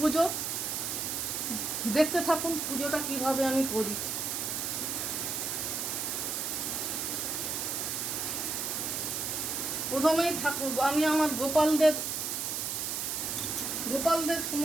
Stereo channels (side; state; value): right; noise; hiss, 1 dB below the sound